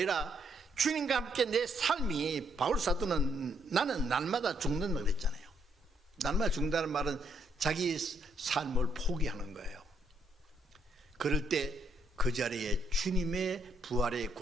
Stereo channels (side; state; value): both; normal; correlation 0.73